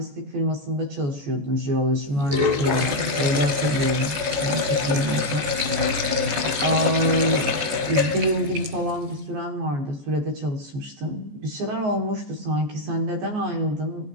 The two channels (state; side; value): late; left; 14 ms